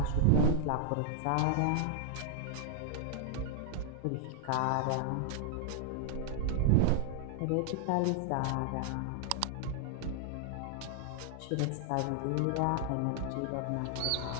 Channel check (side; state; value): both; different; correlation -0.01